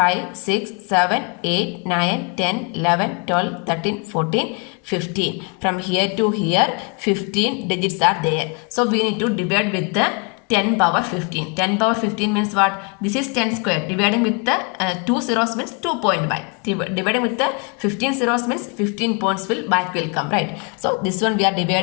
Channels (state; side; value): quieter; right; 33.8 dB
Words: 6, 7, 8, 9, 10, 11, 12, 13, 14, 15. From here to here 15 digits are there. So we need to divide with the 10 power 15. 10 power 15 means what? This is 10 square. Dividing with the 2 zeros means 2.5. Dividing with the 15 zeros means 15 points will come, right? So this one we are